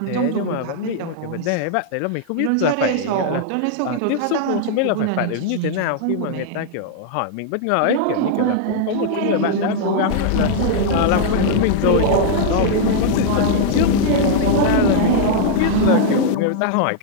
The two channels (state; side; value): different; both; correlation -0.01